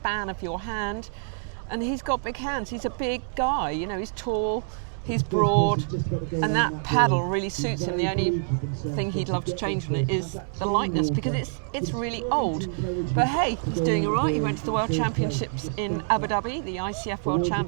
of your hand, and he's got big hands. He's a big guy, you know, he's tall, he's broad, and that paddle really suits him. The only thing he'd love to change on it is the lightness, because it's really old. But hey, he's doing all right. He went to the World Championships in Abu Dhabi, the ICF World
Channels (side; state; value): left; silent; digital silence